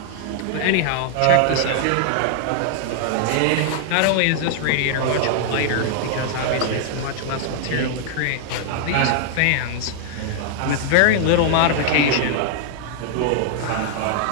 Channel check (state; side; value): different; both; correlation 0.00